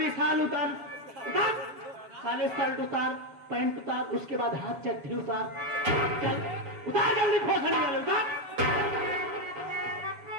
साल उतार, उतार साले, शर्ट उतार, पैंट उतार, उसके बाद हाथ चट्टी उतार, चल उतार जल्दी, खोखड़ी वाले उतार।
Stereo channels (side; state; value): left; late; 7.1 ms